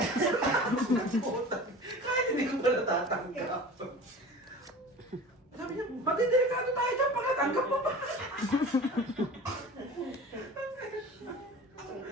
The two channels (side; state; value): both; normal; correlation 0.37